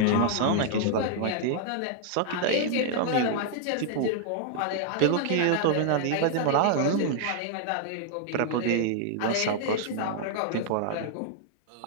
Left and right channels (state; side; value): different; both; correlation 0.00